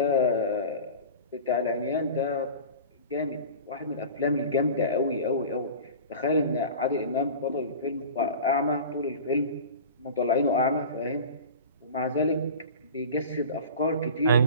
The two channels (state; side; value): inverted; both; correlation -0.35